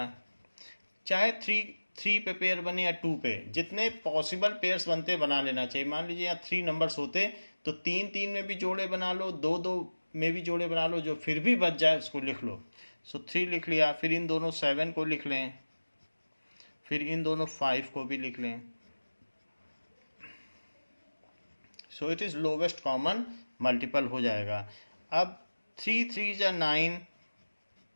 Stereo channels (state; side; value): inverted; both; correlation -1.00